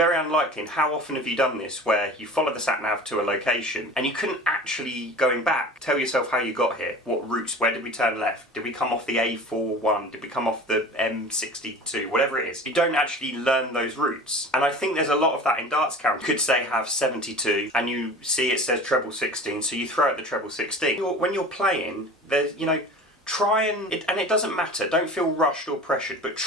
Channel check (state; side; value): normal; both; correlation 0.39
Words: unlikely, and how often have you done this, where you follow the SatNav to a location and you couldn't actually, going back, tell yourself how you got here, what routes, where did we turn left, did we come off the A41, did we come off the M62, whatever it is. You don't actually learn those routes. And I think there's a lot of that in Darts Counter. You could say have 72 and you see it says treble 16, so you throw out the treble 16. When you're playing, there's, you know, try and it doesn't matter, don't feel rushed or pressured, but